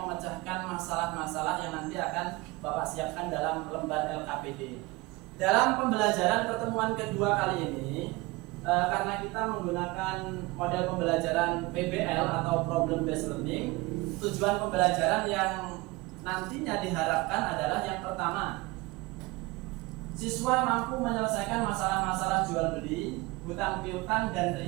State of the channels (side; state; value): left; quieter; 22.6 dB